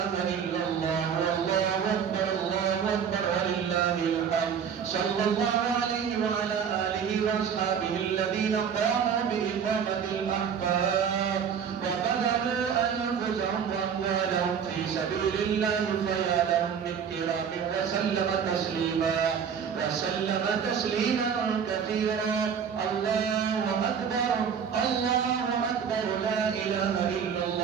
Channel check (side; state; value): left; quieter; 7.4 dB